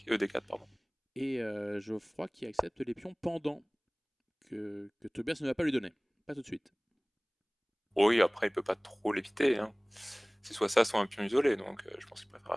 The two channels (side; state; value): both; identical; correlation 1.00